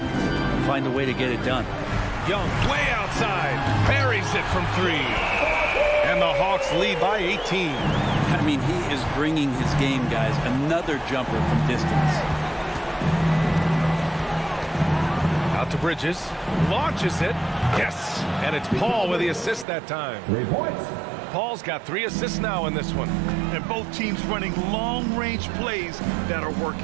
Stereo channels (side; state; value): left; drops out; at 19.7 s